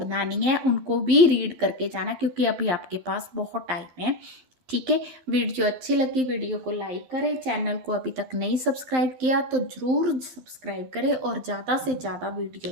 नहीं है, उनको भी रीड करके जाना, क्योंकि अभी आपके पास बहुत टाइम है। ठीक है, वीडियो अच्छी लगी वीडियो को लाइक करें, चैनल को अभी तक नहीं सब्सक्राइब किया तो ज़रूर सब्सक्राइब करें और ज़्यादा से ज़्यादा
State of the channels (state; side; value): late; left; 12 ms